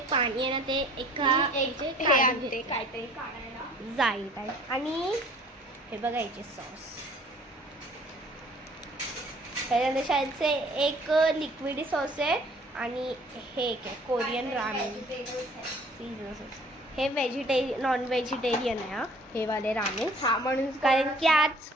पाणी आहे ना ते हे आणते काहीतरी काढायला जाईल आणि हे बघायचे सॉस त्याच्यानंतर शाळेचे एक लिक्विड सॉस आहे आणि हे एक आहे कोरियन रामेन सीजन सॉस. हे नॉन व्हेजिटेरियन आहे हा हे वाले रामेन. हा म्हणून कारण की आज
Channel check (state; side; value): normal; both; correlation 0.53